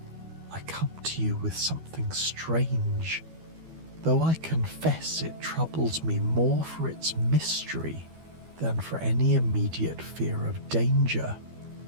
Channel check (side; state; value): left; late; 12 ms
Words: "I come to you with something strange, though I confess it troubles me more for its mystery than for any immediate fear of danger.